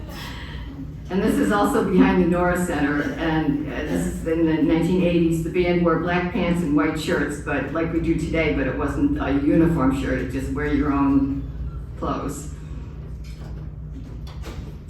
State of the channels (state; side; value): identical; both; correlation 1.00